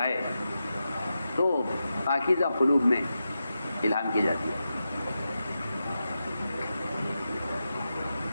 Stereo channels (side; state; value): both; inverted; correlation -0.90